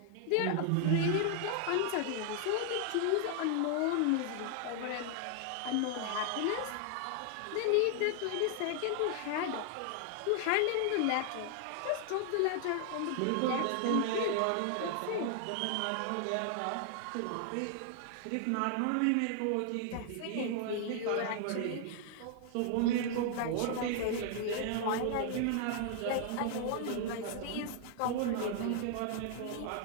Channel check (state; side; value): different; both; correlation 0.00